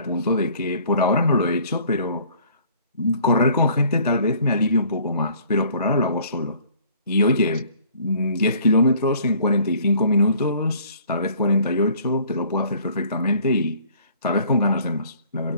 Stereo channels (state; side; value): inverted; both; correlation -0.55